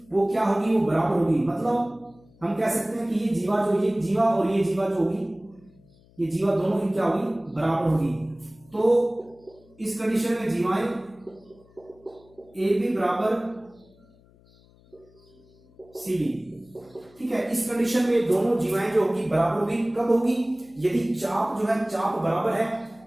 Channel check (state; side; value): noise; left; hum, 28 dB below the sound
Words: वो क्या होगी, वो बराबर होगी। मतलब हम कह सकते हैं कि ये जीवा और ये जीवा जो होगी, ये जीवा दोनों ही क्या होगी, बराबर होगी। तो इस कंडीशन में जीवाएं AB बराबर CD। ठीक है, इस कंडीशन में दोनों जीवाएं जो होगी बराबर होगी। कब होगी, यदि चाप जो है चाप बराबर है,